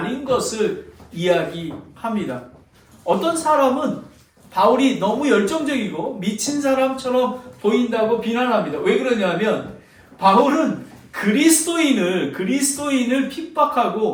것을 이야기합니다. 어떤 사람은 바울이 너무 열정적이고 미친 사람처럼 보인다고 비난합니다. 왜 그러냐면 바울은 그리스도인을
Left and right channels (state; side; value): identical; both; correlation 1.00